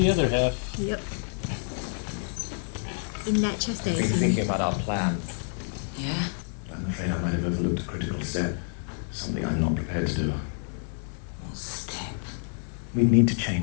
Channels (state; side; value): silent; right; 58 dB below the other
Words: other half. Yep. In that chest, I I've been assume. thinking about our plan. Yeah? I'm afraid I might have overlooked a critical step. Something I'm not prepared to do. What step? We need to